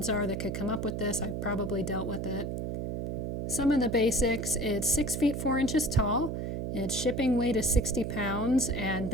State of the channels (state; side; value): noise; right; hum, 3 dB below the sound